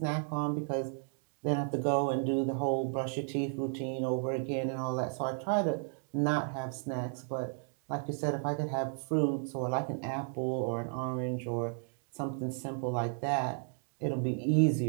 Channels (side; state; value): left; silent; 55 dB below the other